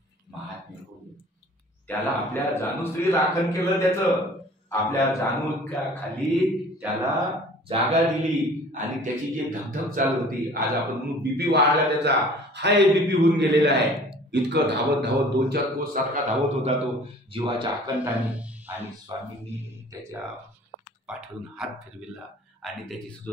महात्म्य हो. त्याला आपल्या जाणूश्री राखण केलं, त्याचं आपल्या जाणूच्या खाली त्याला जागा दिली. आणि त्याची जी धगधग चालू होती, आज आपण म्हणून बीपी वाढला, त्याचा हाय बीपी होऊन गेलेला आहे. इतकं धावत धावत 2-4 कोस सारखा धावत होता तो जीवाच्या आकांताने. आणि स्वामींनी त्याच्या पाठवून हात फिरविला आणि त्याची सुद्धा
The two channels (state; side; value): normal; both; correlation 0.49